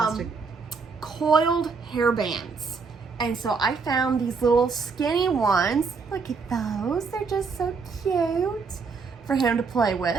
Coiled hair bands. And so I found these little skinny ones. Look at those. They're just so cute for him to play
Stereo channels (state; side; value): quieter; left; 4.9 dB